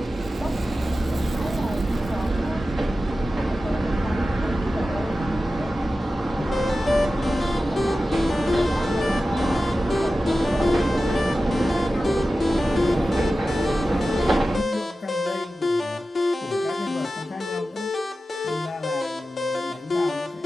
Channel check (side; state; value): both; normal; correlation 0.94